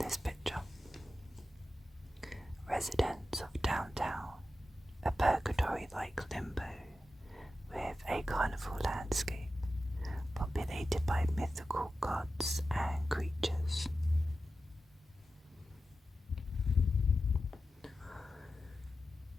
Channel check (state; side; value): normal; both; correlation 0.92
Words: picture. Residents of downtown, a purgatory-like limbo with a carnival landscape populated by mythical gods and creatures.